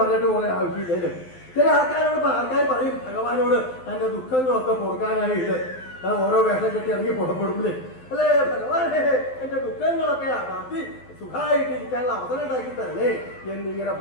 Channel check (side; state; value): right; late; 12 ms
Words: പോലെ ആവശ്യമില്ലേ? ചില ആൾക്കാർ പറയും ഭഗവാനോട് തന്റെ ദുഃഖങ്ങളൊക്കെ പൊറുക്കാനായിട്ട് ഓരോ വേഷം കെട്ടി ഇറങ്ങി പുറപ്പെടുമ്പില്ലേ? അല്ലേ ഭഗവാനെ എന്റെ ദുഃഖങ്ങളൊക്കെ മാറ്റി സുഖമായിട്ട് ഇരിക്കാനുള്ള അവസരം ഉണ്ടാക്കി തരണേ എന്നിങ്ങനെ